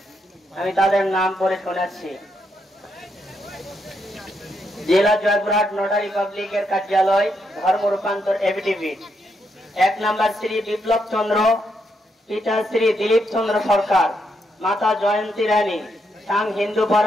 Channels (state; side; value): normal; both; correlation 0.79